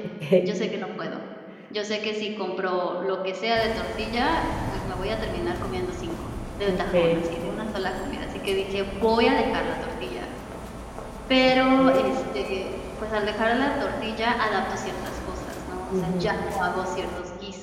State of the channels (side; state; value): both; identical; correlation 1.00